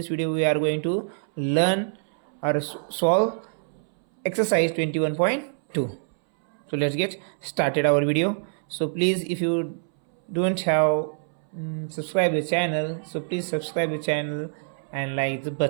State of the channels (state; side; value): silent; left; 61 dB below the other